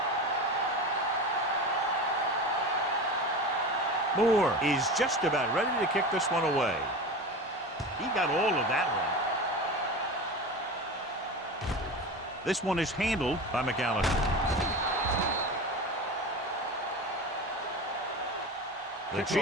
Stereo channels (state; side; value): normal; both; correlation 0.29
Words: Moore is just about ready to kick this one away. He got all of that one. This one is handled by McAllister. The